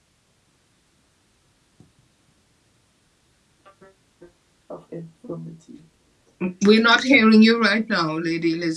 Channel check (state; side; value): identical; both; correlation 1.00